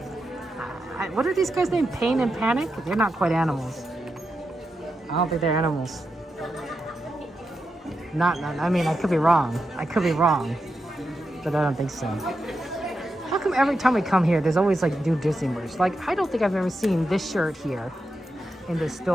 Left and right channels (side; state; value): both; normal; correlation 0.87